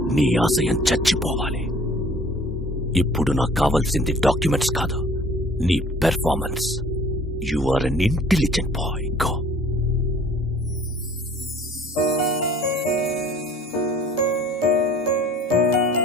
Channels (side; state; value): both; normal; correlation 0.51